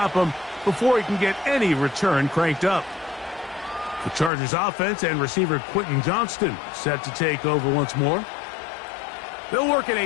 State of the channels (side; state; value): right; drops out; at 4.3 s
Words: him before he can get any return cranked up. The Chargers offense and receiver Quentin Johnston set to take over once more. They'll work in